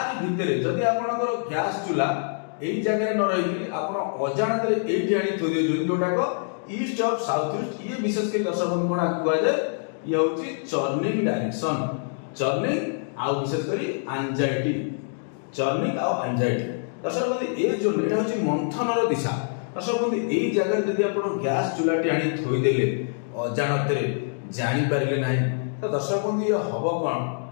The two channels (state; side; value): silent; right; digital silence